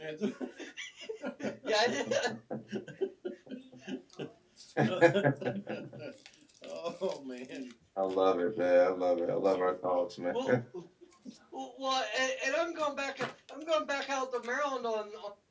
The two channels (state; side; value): identical; both; correlation 1.00